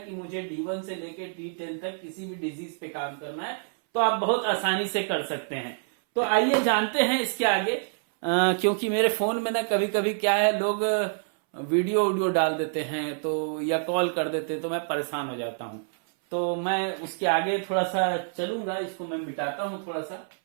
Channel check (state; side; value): silent; left; 60 dB below the other